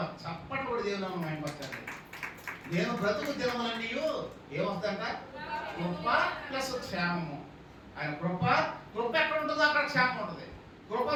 చప్పటి కూడా దేవుని మైంపరచాలి. నేను బ్రతుకు దినములన్నీయు ఏమొస్తుందంట? కృప ప్లస్ క్షేమము. ఆయన కృప ఎక్కడ ఉంటుందో అక్కడ క్షేమం ఉంటుంది. కృప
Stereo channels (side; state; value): both; identical; correlation 1.00